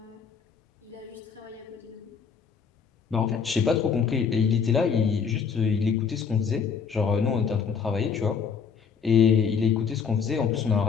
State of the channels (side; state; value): right; quieter; 6.3 dB